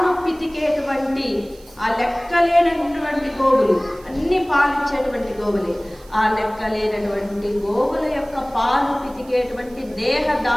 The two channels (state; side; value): noise; right; hiss, 26 dB below the sound